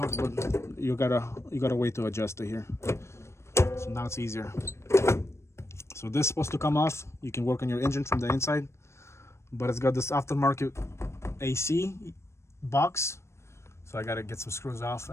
but you got a way to adjust it here. So now it's easier. So this is supposed to come off. You can work on your engine from the inside, but it's got this aftermarket AC box. So I gotta get some screws off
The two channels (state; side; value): late; right; 0.13 ms